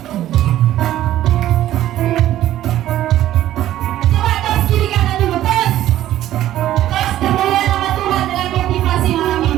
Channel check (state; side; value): quieter; left; 13.2 dB